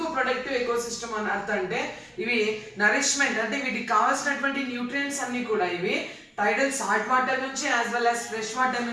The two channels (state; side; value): identical; both; correlation 1.00